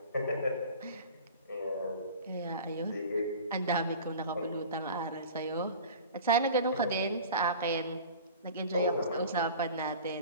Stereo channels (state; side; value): inverted; both; correlation -0.39